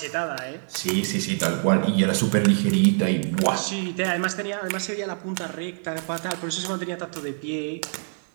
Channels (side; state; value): left; silent; digital silence